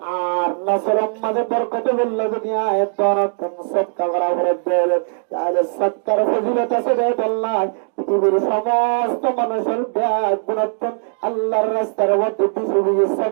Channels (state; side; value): silent; left; digital silence